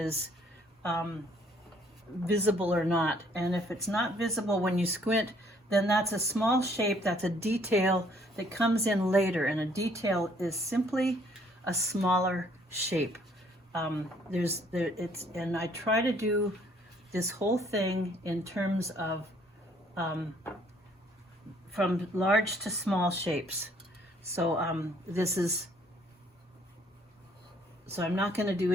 visible or not. And if it's not visible when you squint, then that's a small shape, that's a detail that comes in later. And a detail is simply a smaller shape. And I try to do this whole thing in terms of from large to small shapes. So so I'm not going to do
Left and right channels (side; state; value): both; normal; correlation 0.63